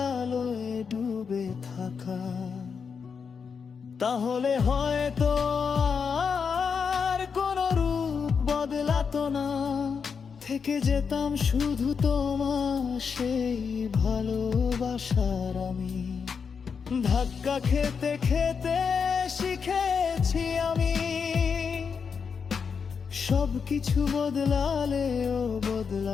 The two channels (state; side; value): quieter; right; 6.0 dB